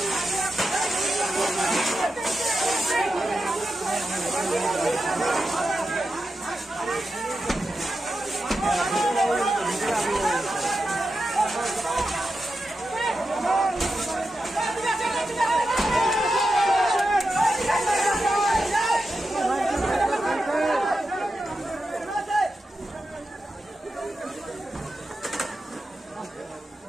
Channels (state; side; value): normal; both; correlation 0.89